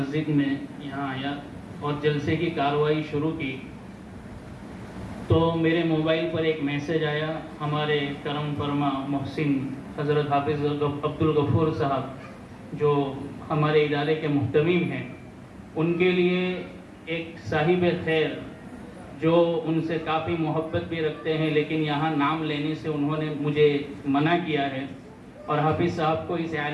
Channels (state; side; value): identical; both; correlation 1.00